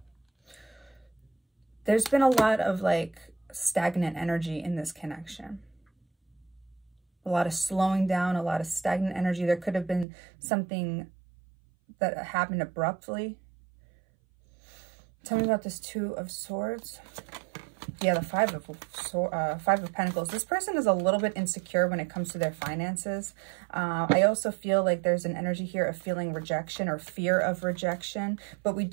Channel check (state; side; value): drops out; left; at 10.1 s